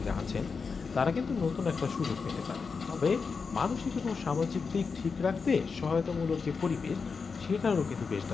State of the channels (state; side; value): quieter; right; 5.1 dB